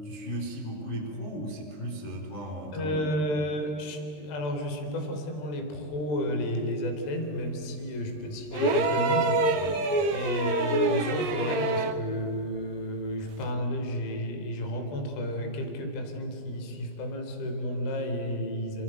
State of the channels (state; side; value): late; right; 20 ms